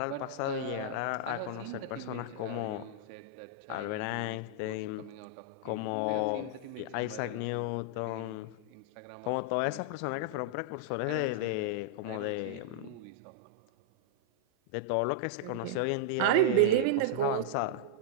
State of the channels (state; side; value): different; both; correlation -0.02